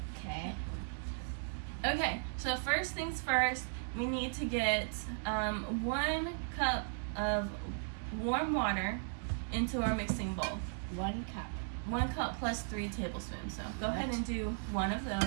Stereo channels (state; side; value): silent; left; digital silence